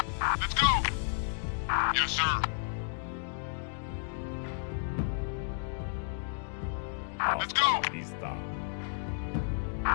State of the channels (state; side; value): silent; right; digital silence